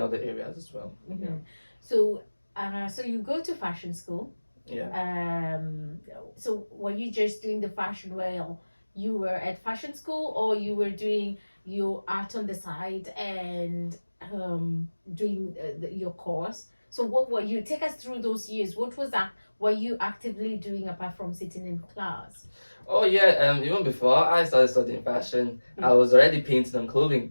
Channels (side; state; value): both; inverted; correlation -1.00